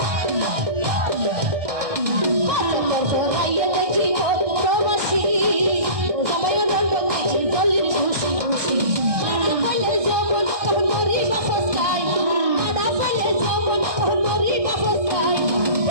সফর করাইয়ে দেখি প্রবাসী সবাই রঙ্গল দেখি জলের খুশি খুশি মারা পাইলে যখন তখন মরি বাপস গাই মারা পাইলে যখন তখন মরি বাপস গাই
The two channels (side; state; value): left; late; 1.6 ms